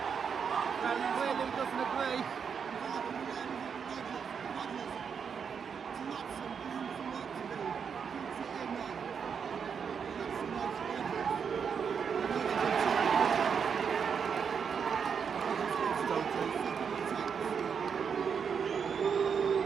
Clearly doesn't agree.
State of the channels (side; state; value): left; quieter; 6.7 dB